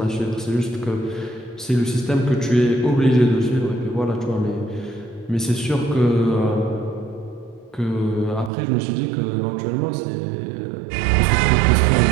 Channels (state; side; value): drops out; left; at 8.5 s